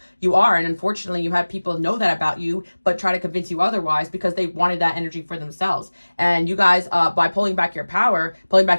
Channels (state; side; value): inverted; both; correlation -1.00